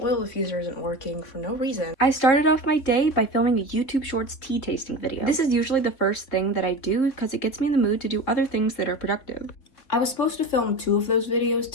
oil diffuser isn't working for no reason. I started off my day by filming a YouTube Shorts tea tasting video. This is usually the first thing that I do because it gets me in the mood to do other things that are productive. I was supposed to film 2 of those videos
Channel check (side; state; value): right; late; 3.4 ms